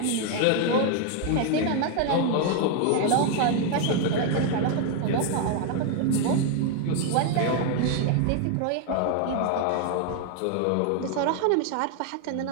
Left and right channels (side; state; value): both; different; correlation 0.00